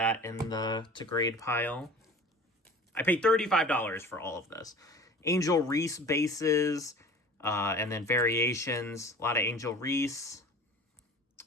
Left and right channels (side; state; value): both; normal; correlation 0.41